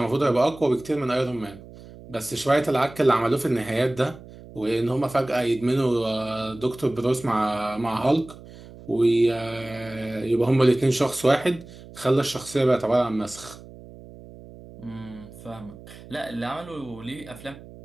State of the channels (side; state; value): right; noise; hum, 18 dB below the sound